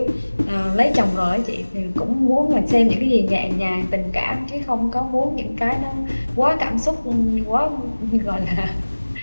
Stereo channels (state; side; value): inverted; both; correlation -1.00